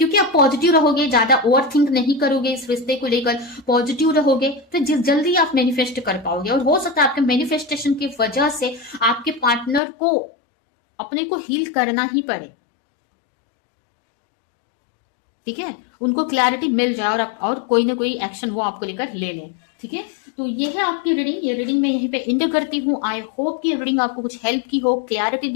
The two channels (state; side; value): drops out; right; at 9.8 s